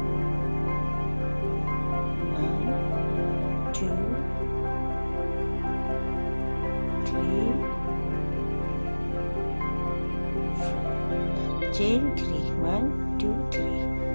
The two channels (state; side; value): inverted; both; correlation -1.00